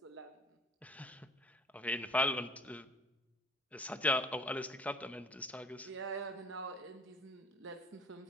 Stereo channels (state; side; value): normal; both; correlation 0.50